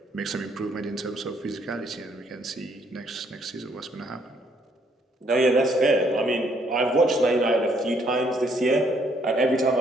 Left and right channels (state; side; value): normal; both; correlation 0.68